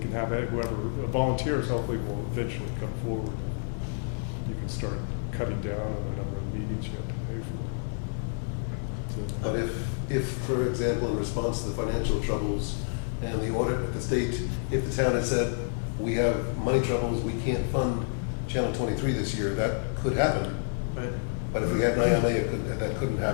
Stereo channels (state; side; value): silent; right; 59 dB below the other